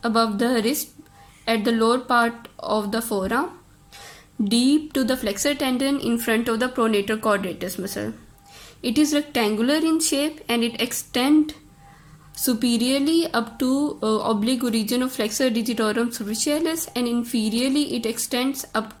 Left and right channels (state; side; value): identical; both; correlation 1.00